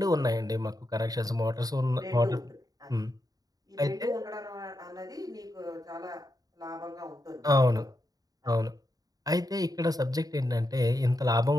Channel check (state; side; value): late; left; 0.18 ms